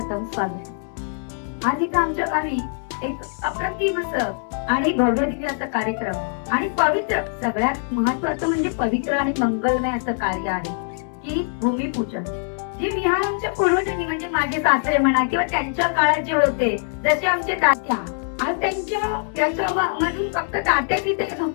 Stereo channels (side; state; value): right; silent; 64 dB below the other